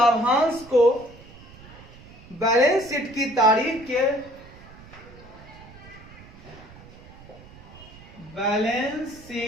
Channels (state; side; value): noise; right; rumble, 20 dB below the sound